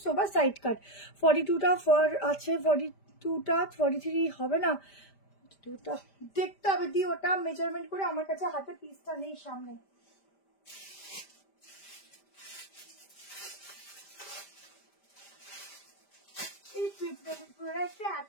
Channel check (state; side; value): late; right; 5.1 ms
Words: সোবার সাইড কাট। 42টা ফর আছে, 42টা 43 হবে না, 42টা দেখতে হবে, দিয়ে ওটা মেজারমেন্ট করে, আমার কাছে হাতে পিসটা নেই সামনে। এই প্রোডাক্টটা